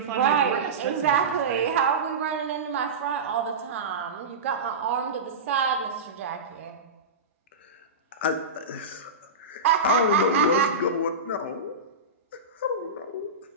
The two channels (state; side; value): quieter; left; 3.5 dB